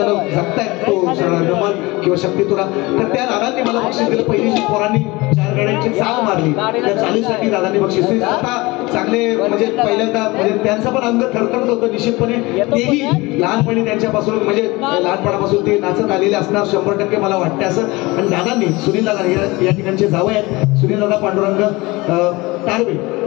जगतायत तो नमन किंवा शक्तितुरा. तर त्या दादांनी मला बक्षीस दिलं. पहिली पोरांनी 4 गाड्यांची चाल मारली त्या चालीसाठी दादांनी बक्षीस दिलं. आता चांगले म्हणजे पहिल्यांदा म्हणजे त्यांचं पण अंग थरथरत होतं निश्चितपणे. तेही लहानपणी त्यांच्यापासून म्हणजे लहानपणापासून ते नाचत आलेले असणार 100% मला वाटते असं. आणि दादांनी सुनील दादा या ठिकाणचे जावं आहेत सुनील दादा पांडुरंग तारवे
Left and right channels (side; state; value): right; quieter; 22.5 dB